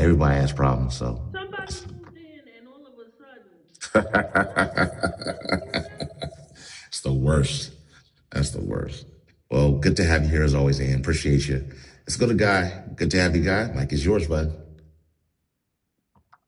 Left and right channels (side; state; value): both; identical; correlation 1.00